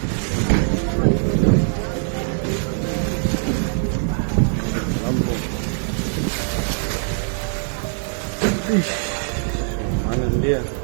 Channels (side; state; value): left; silent; 59 dB below the other